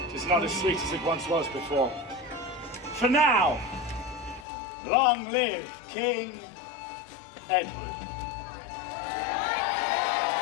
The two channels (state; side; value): drops out; right; at 4.5 s